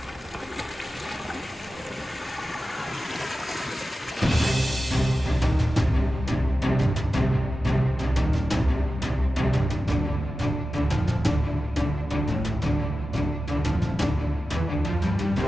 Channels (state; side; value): normal; both; correlation 0.93